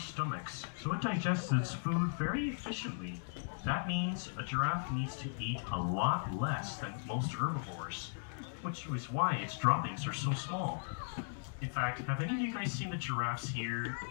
so it digests its food very efficiently. That means a giraffe needs to eat a lot less than most herbivores, which is why its droppings are so small. In fact, have any of you guys seen the giraffes here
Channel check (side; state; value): right; silent; digital silence